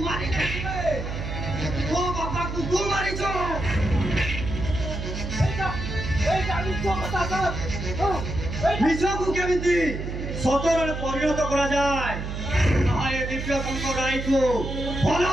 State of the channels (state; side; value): noise; right; hum, 5 dB below the sound